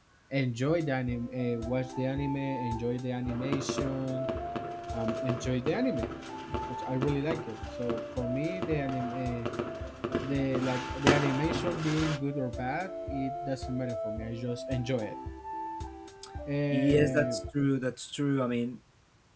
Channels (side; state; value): both; identical; correlation 1.00